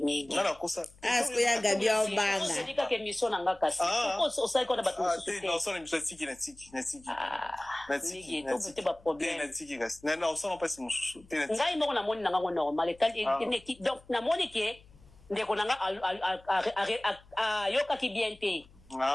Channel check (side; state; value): left; noise; hum, 26 dB below the sound